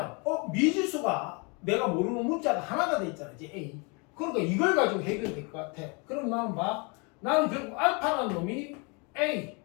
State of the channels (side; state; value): right; quieter; 31.8 dB